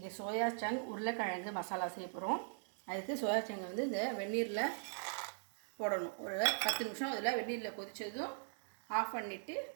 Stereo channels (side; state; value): left; silent; digital silence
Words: soya chunk உருளைக்கிழங்கு மசாலா செய்ய போகிறோம். அதுக்கு சோயா சங்கை வந்து இந்த வெந்நீரில் போடணும். ஒரு 10 நிமிஷம் அதில் வெந்நீரில் கொதித்ததும் ஆஃப் பண்ணிவிட்டு